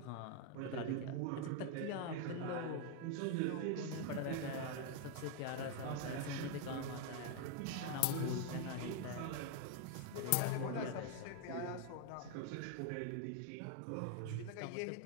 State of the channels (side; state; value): both; different; correlation 0.01